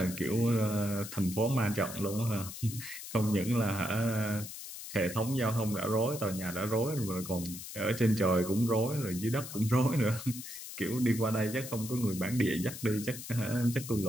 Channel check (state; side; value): noise; left; hiss, 11 dB below the sound